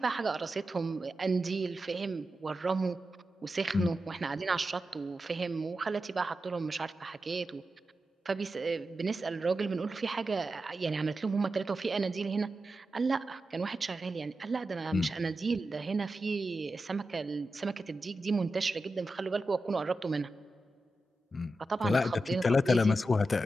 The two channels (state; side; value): normal; both; correlation 0.90